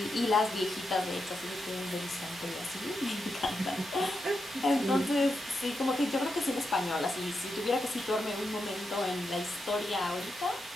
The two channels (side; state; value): both; normal; correlation 0.86